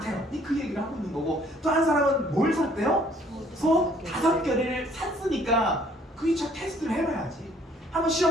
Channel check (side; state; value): both; normal; correlation 0.60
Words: 그 얘기를 하고 있는 거고, 또 한 사람은 뭘 샀대요? 소 5개를 샀으니까 그 2차 테스트를 해봐야지. 한번